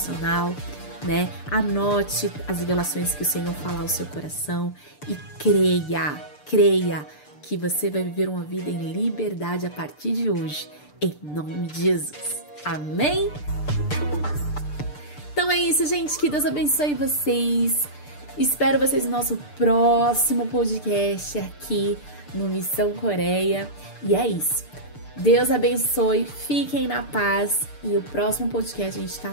né? Anote as revelações que o Senhor fala ao seu coração e creia que você vai viver uma vida em liberdade a partir de hoje, em nome de Jesus. Amém? Então é isso, gente. Que Deus abençoe vocês. Espero vocês no nosso próximo podcast aqui no Missão Coreia. E é isso. Deus abençoe, fiquem na paz. E o próximo podcast a gente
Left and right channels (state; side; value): late; right; 6.8 ms